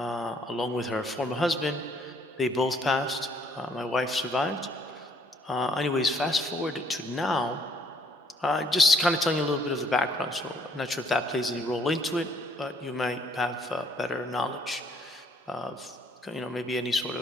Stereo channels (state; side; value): normal; both; correlation 0.64